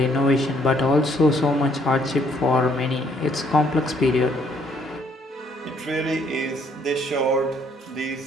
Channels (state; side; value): normal; both; correlation 0.66